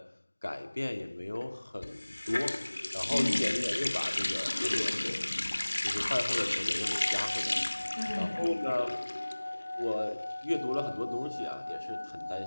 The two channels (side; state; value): both; inverted; correlation -1.00